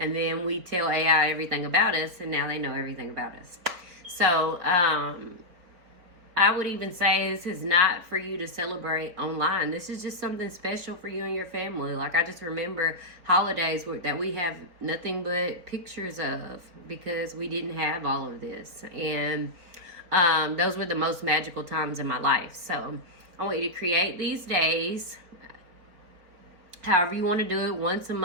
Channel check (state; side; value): late; left; 4.2 ms